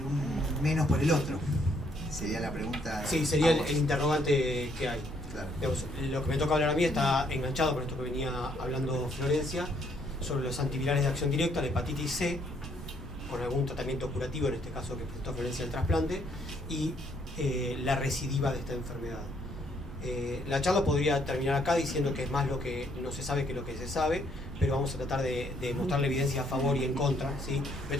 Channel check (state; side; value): normal; both; correlation 0.69